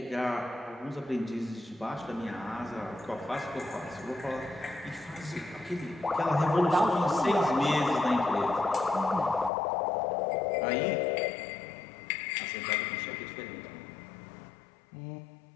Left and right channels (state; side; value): drops out; right; at 9.5 s